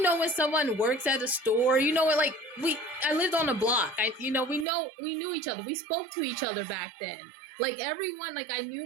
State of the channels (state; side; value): drops out; left; at 4.7 s